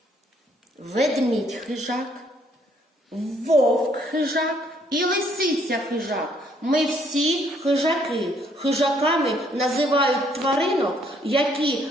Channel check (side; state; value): both; normal; correlation 0.67